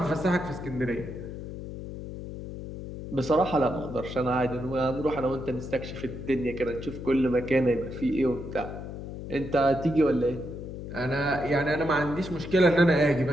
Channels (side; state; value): left; noise; hum, 9 dB below the sound